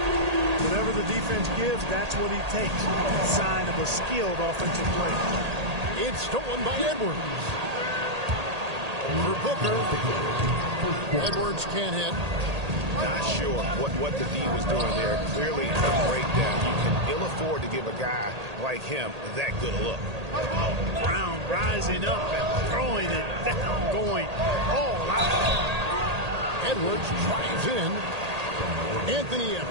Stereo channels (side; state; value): left; late; 1.8 ms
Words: Whatever the defense gives, that's what he takes. Sign of a skilled offensive player. It's stolen by Edwards. For Booker. Edwards can't hit. Not sure what the D was doing there. Clearly a breakdown. You can ill afford to give a guy like him that good a look. Brown rising up and throwing it down, going all out. Edwards drives in. Anthony